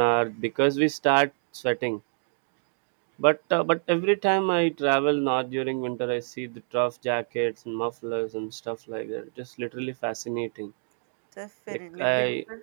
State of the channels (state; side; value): silent; left; 60 dB below the other